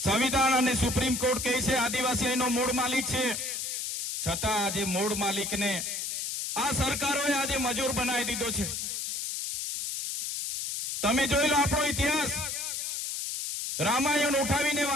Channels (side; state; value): left; noise; hiss, 3 dB below the sound